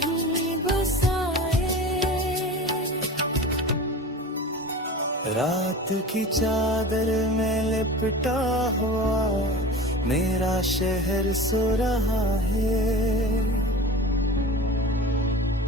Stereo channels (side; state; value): both; normal; correlation 0.35